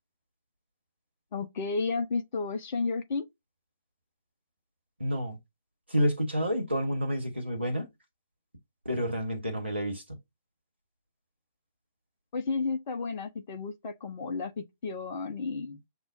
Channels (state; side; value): inverted; both; correlation -0.79